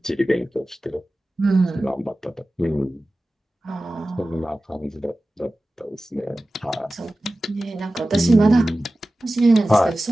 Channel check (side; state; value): both; normal; correlation 0.96